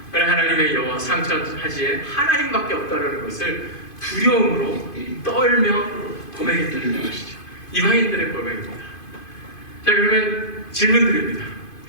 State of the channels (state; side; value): late; right; 2.5 ms